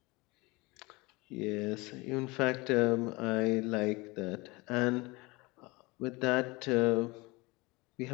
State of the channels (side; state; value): right; quieter; 24.2 dB